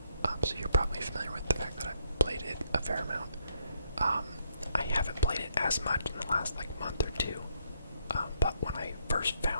so you're probably familiar with the fact that I've played it a fair amount. I haven't played it as much in the last month or two, but when I first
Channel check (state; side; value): inverted; both; correlation -0.73